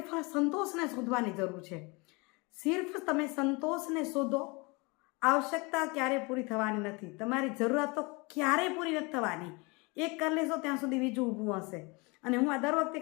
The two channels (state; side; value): quieter; right; 27.6 dB